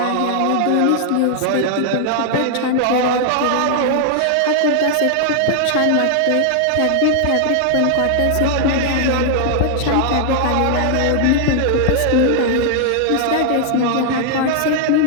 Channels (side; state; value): both; different; correlation 0.00